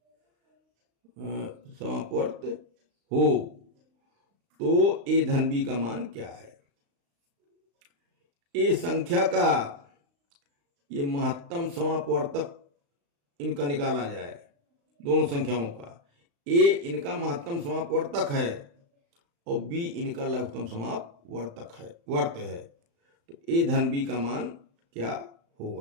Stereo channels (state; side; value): late; left; 35 ms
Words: समापवर्त हो तो ए धन बी का मान क्या है। ए संख्या का ये महत्तम समापवर्तक इनका निकाला जाए, दोनों संख्याओं का। ए इनका महत्तम समापवर्तक है और बी इनका लघुत्तम समापवर्तक है, वर्त है। तो ए धन बी का मान क्या